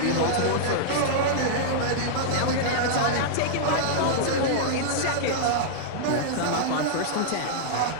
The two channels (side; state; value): both; different; correlation -0.02